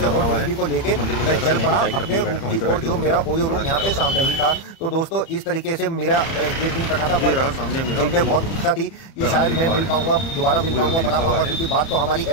को लेके मैं चल पड़ा अपने और जो मेरा ओयो रूम यहाँ पे सामने ही था। तो दोस्तों इस तरीके से मेरा एक दिन कटा था। मैं बहुत इच्छा थी कि शायद मैं मिल पाऊंगा, दोबारा मिल पाऊंगा, बना पाऊंगा, क्योंकि बात तो हमारी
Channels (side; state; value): right; late; 30 ms